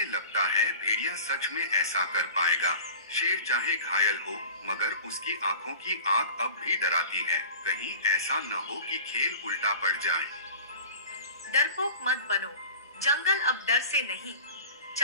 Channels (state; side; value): inverted; both; correlation -0.38